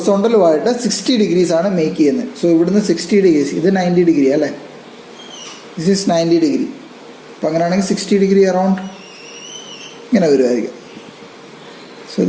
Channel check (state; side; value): identical; both; correlation 1.00